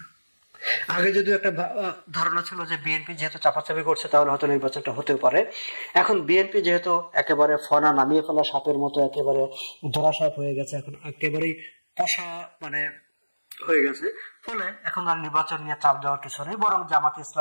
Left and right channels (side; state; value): both; inverted; correlation -1.00